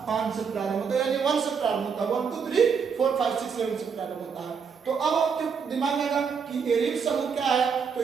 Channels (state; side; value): quieter; left; 6.2 dB